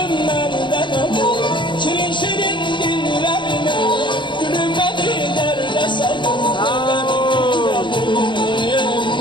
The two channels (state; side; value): late; right; 0.23 ms